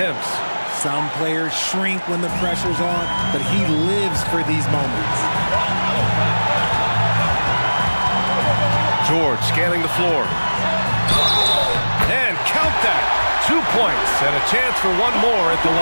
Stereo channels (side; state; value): both; inverted; correlation -1.00